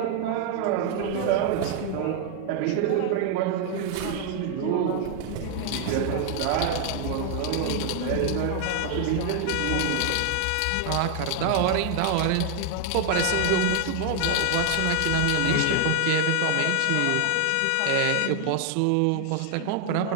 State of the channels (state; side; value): different; both; correlation 0.00